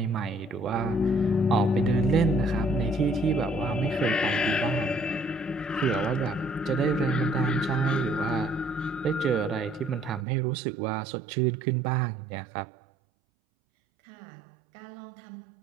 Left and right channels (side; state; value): left; drops out; at 10.2 s